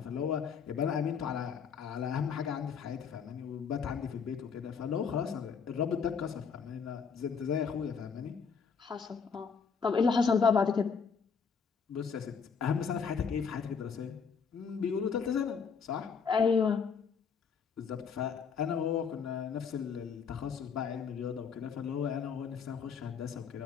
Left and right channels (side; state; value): right; quieter; 6.2 dB